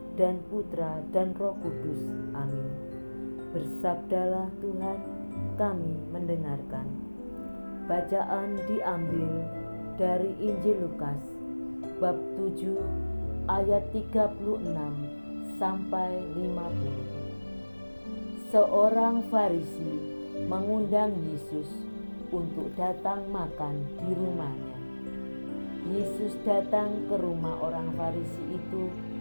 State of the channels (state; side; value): inverted; both; correlation -1.00